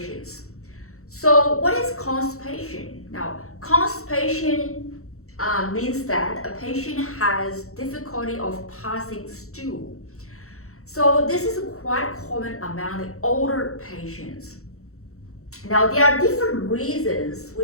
So what is constipation? Now constipation means that a patient has difficulty of passing stool. So this is quite common among the older patients. Now there are different reasons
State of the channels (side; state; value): right; late; 0.64 ms